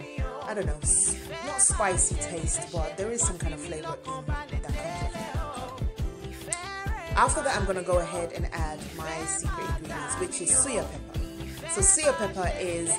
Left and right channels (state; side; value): identical; both; correlation 1.00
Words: I don't know, not spicy taste, but there is some kind of flavor in that comes with it. After that, I'm going to go ahead and add my secret ingredients, which is suya pepper. So suya pepper is